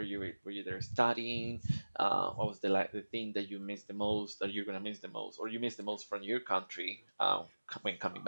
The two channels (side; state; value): both; inverted; correlation -1.00